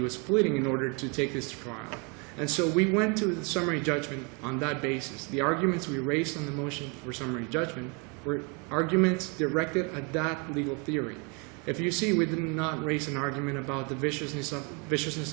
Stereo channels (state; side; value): quieter; left; 32.8 dB